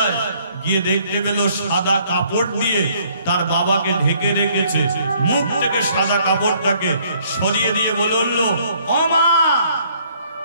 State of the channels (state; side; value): inverted; both; correlation -0.63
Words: গিয়ে দেখতে পেল সাদা কাপড় দিয়ে তার বাবাকে ঢেকে রেখেছে। মুখ থেকে সাদা কাপড়টাকে সরিয়ে দিয়ে বলে উঠল, ও মা,